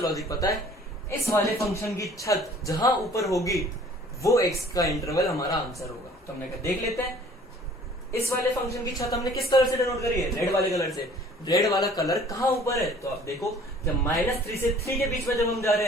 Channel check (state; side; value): normal; both; correlation 0.52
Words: पता है, इस वाले फंक्शन की छत जहां ऊपर होगी वो x का इंटरवल हमारा आंसर होगा। तो हमने कहा देख लेते हैं, इस वाले फंक्शन की छत हमने किस कलर से डिनोट करी है, रेड वाले कलर से। रेड वाला कलर कहाँ ऊपर है, तो आप देखो जब -3 से 3 के बीच में जब हम जा रहे